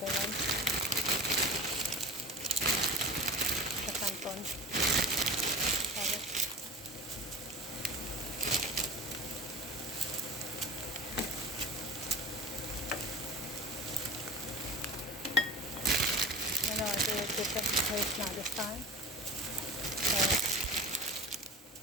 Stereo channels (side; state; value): both; normal; correlation 0.37